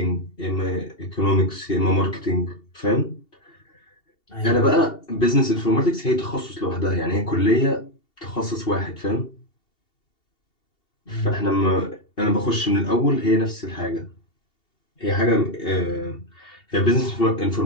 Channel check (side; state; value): right; late; 2.7 ms